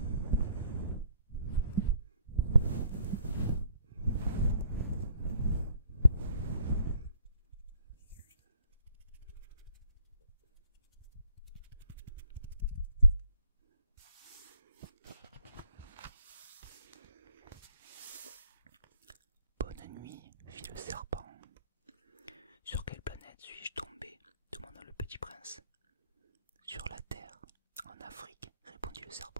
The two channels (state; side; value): inverted; both; correlation -0.61